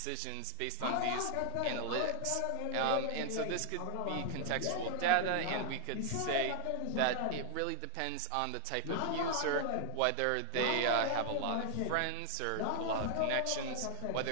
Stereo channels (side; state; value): both; different; correlation 0.00